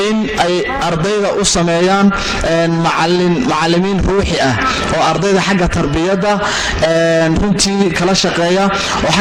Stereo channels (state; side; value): identical; both; correlation 1.00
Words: in ay ardayda u sameeyaan macallimiin ruuxi ah oo ardayda xagga tarbiyadda runtii kala shaqeeya oo